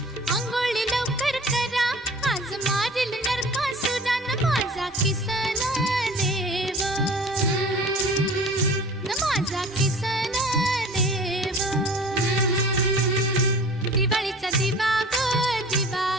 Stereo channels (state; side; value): normal; both; correlation 0.43